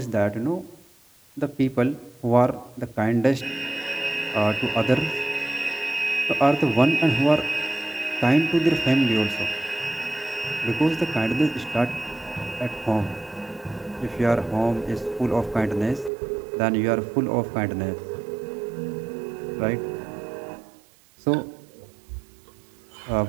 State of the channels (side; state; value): left; drops out; at 16.1 s